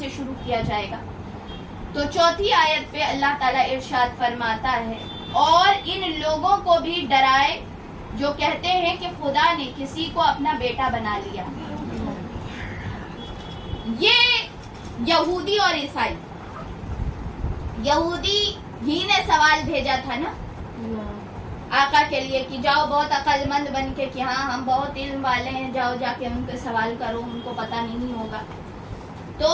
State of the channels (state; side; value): identical; both; correlation 1.00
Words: شروع کیا جائے گا۔ تو 4تھی آیت پہ اللہ تعالیٰ ارشاد فرماتا ہے اور ان لوگوں کو بھی ڈرائے جو کہتے ہیں کہ خدا نے کسی کو اپنا بیٹا بنا لیا۔ یہ یہودی اور عیسائی، یہودی ہی نے سوال بھیجا تھا نا آقا کے لیے کہ جاؤ بہت عقل مند بن کے کہ ہاں ہم بہت علم والے ہیں، جاؤ جا کے ان کے سوال کرو، ان کو پتہ نہیں ہوگا۔ تو